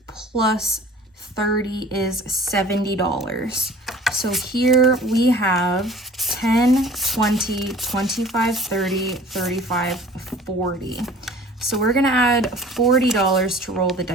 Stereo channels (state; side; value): normal; both; correlation 0.46